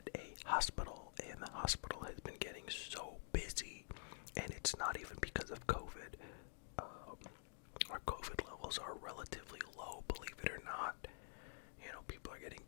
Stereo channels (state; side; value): silent; right; digital silence